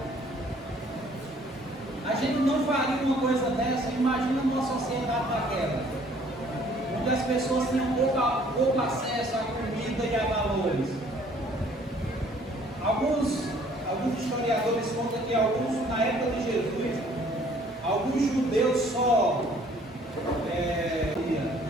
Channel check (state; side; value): normal; both; correlation 0.58